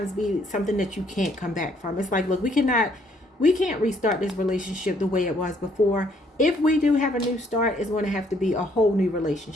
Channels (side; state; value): both; normal; correlation 0.67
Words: be something that you can't come back from. It's like, look, we can't restart this relationship the way it was before. If we do have a new start, it's going to have to be a whole new